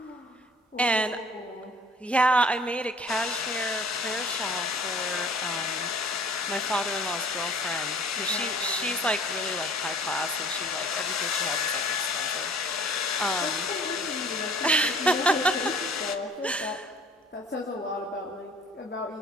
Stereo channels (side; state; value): both; normal; correlation 0.51